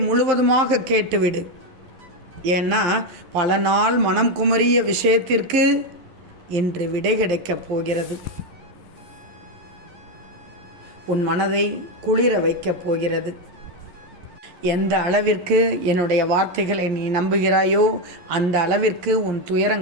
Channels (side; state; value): left; late; 11 ms